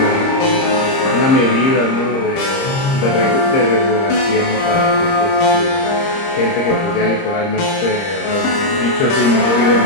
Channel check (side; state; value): right; late; 30 ms